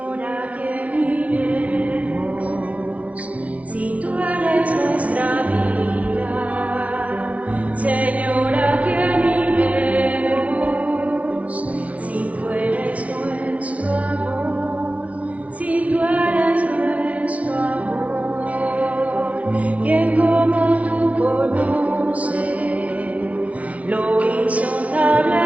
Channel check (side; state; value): left; late; 0.067 ms